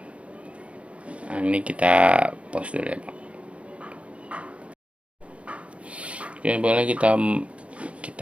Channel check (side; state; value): left; late; 0.062 ms